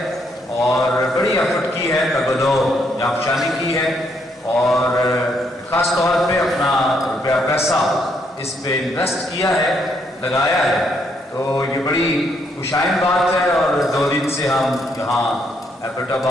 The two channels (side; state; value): both; normal; correlation 0.73